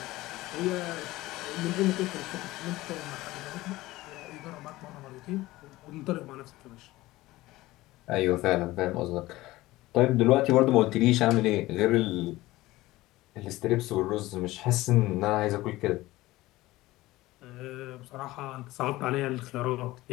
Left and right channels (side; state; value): right; quieter; 18.1 dB